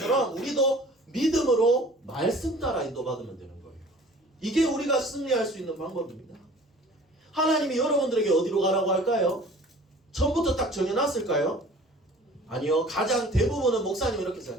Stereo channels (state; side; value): normal; both; correlation 0.47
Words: 우리도 믿음으로 말씀 따라 인도받으면 되는 거예요. 이게 우리가 승리할 수 있는 방법입니다. 하나님이 여러분들에게 어디로 가라고 할까요? 처음부터 딱 정해놨을까요? 아니요. 가장 대부분은 목사님이 이렇게